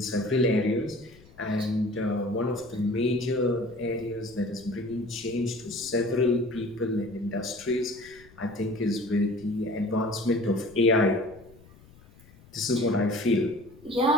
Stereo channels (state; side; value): noise; left; rumble, 24 dB below the sound